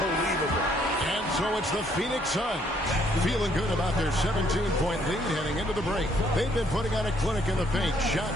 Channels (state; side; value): normal; both; correlation 0.67